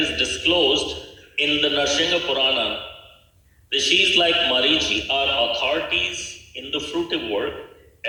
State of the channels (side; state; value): both; identical; correlation 1.00